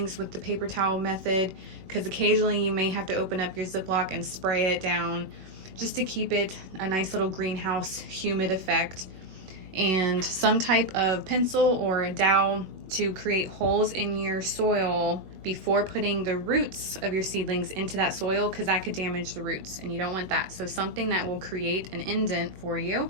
with the paper towel method, because occasionally you may have to open up your Ziploc and spray it down just to keep it a nice little greenhouse humid effect. And some type of pencil or a dowel to create holes in your soil before putting the roots of your seedlings into that soil, because that could damage the roots and you don't want that. So something that will create an indent for you.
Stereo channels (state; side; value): late; left; 21 ms